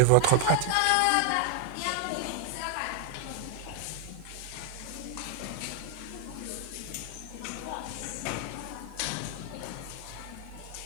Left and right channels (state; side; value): different; both; correlation 0.00